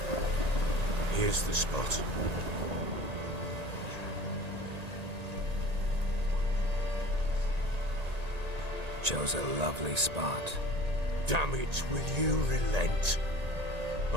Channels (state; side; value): late; left; 1.8 ms